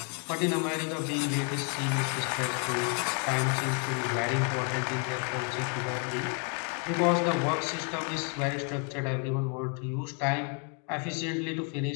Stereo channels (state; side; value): quieter; right; 36.8 dB